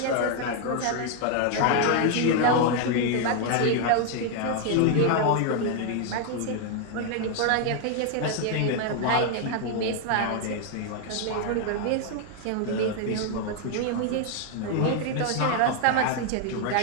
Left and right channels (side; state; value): both; different; correlation 0.00